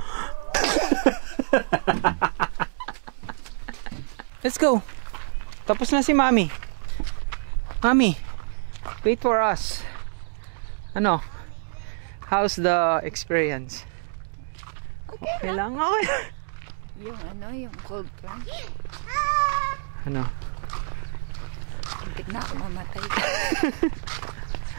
Let's go. Tapos na si Mommy. Mommy, wait for us. Ano? How's the experience? Okay lang. Okay. Yung cold plunge. Ano? Hindi na ako mamatay.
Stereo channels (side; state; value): left; silent; digital silence